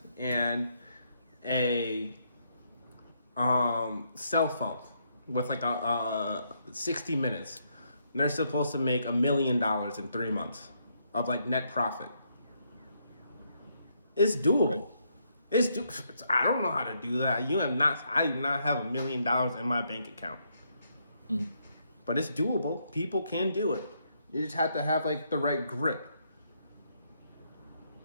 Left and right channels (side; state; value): both; inverted; correlation -0.75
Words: and a cell phone with like a 60 minutes, and they're supposed to make $1 million in 3 months of like net profit. It's doable. Right. I don't know how to do that. I do not have $1 million in my bank account. Mm-hmm. But it's doable. People can do it. You just have to have like the right grit.